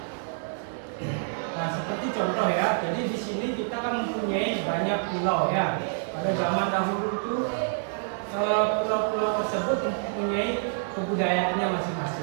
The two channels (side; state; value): left; silent; digital silence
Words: Nah, seperti contoh ya, jadi di sini kita kan mempunyai banyak pulau ya. Pada zaman dahulu itu pulau-pulau tersebut mempunyai kebudayaannya